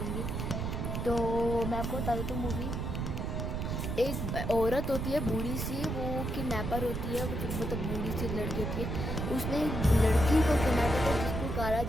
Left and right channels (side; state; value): right; noise; rumble, 2 dB below the sound